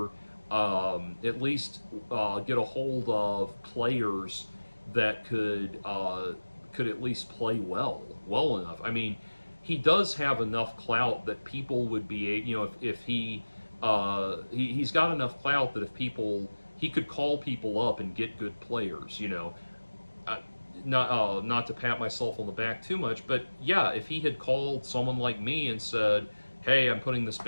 get a hold of players that could at least play well enough. I mean, he does have enough clout that people would be, you know, if he's got enough clout that he could call people up and get good players, you know. Not to pat myself on the back too much, but yeah, if he had called someone like me and said, hey, I'm putting this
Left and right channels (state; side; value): inverted; both; correlation -1.00